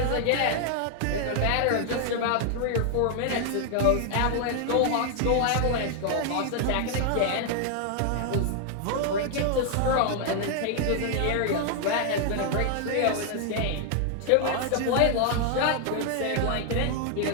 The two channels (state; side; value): different; both; correlation 0.00